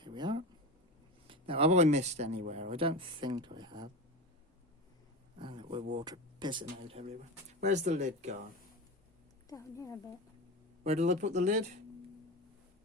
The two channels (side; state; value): both; normal; correlation 0.25